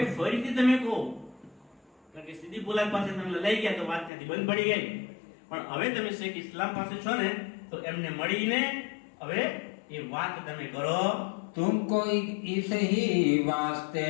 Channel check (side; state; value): right; drops out; at 4.1 s